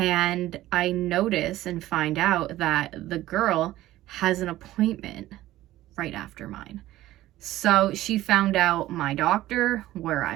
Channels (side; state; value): left; quieter; 15.3 dB